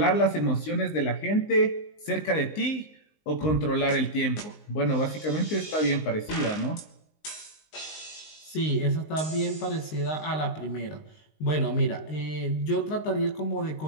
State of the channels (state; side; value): late; right; 19 ms